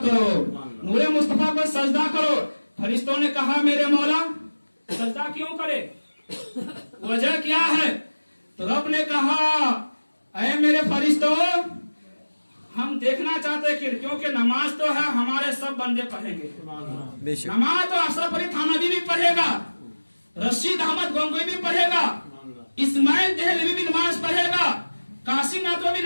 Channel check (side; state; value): both; inverted; correlation -1.00